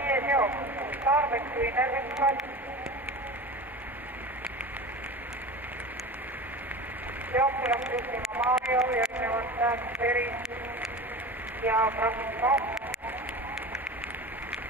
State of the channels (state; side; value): normal; both; correlation 0.31